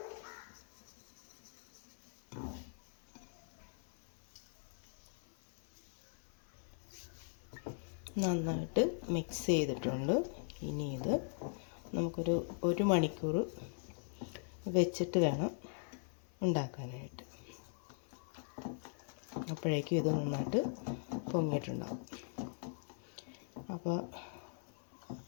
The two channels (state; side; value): silent; right; 51 dB below the other